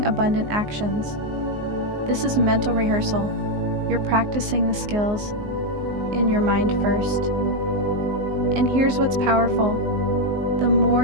abundant actions. This is mental rehearsal. You're practicing the skills in your mind first. And here's what's powerful. The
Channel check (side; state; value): left; late; 19 ms